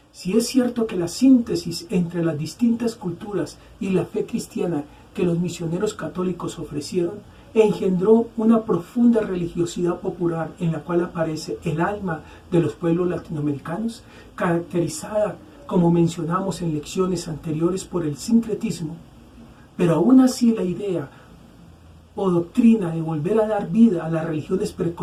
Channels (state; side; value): identical; both; correlation 1.00